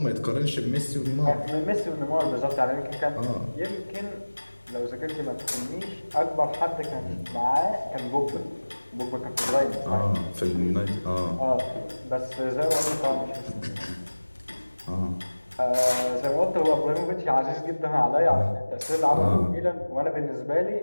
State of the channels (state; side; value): inverted; both; correlation -1.00